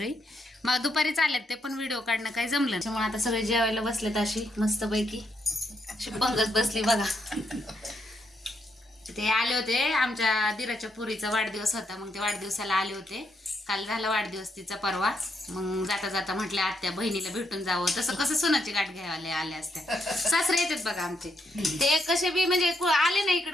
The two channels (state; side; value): normal; both; correlation 0.78